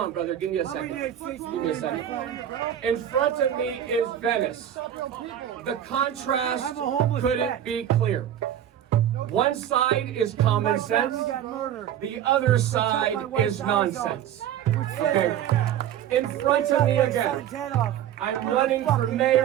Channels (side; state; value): left; quieter; 10.6 dB